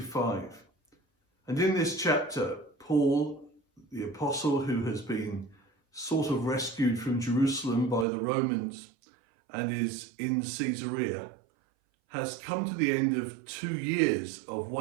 and in this chapter, Paul, the apostle who has been sort of rescued from Jerusalem by the Romans and is in Caesarea, has come to the end of 2 years of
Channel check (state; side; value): drops out; left; at 8.1 s